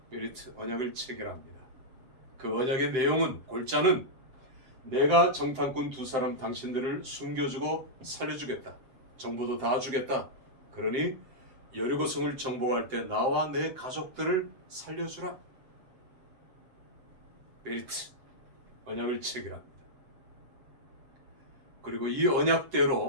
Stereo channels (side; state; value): left; late; 7.7 ms